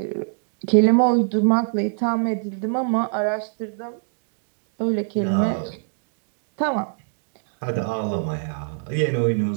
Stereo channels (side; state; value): left; silent; digital silence